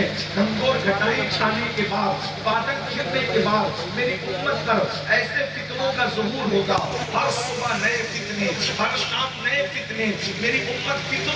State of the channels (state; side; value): identical; both; correlation 1.00